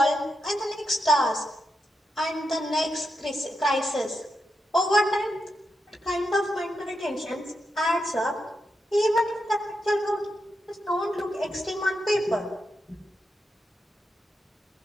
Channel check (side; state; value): both; normal; correlation 0.86